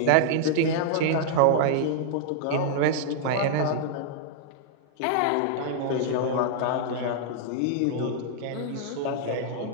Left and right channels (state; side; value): different; both; correlation -0.01